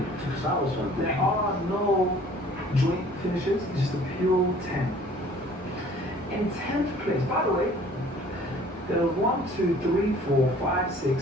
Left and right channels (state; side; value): normal; both; correlation 0.52